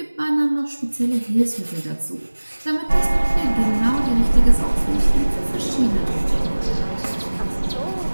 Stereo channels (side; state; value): both; inverted; correlation -1.00